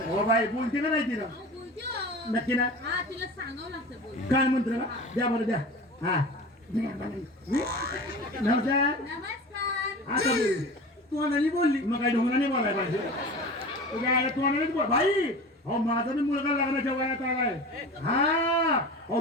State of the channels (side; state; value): both; normal; correlation 0.34